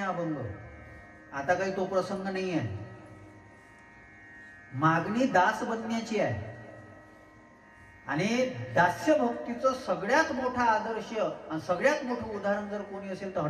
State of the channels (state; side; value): identical; both; correlation 1.00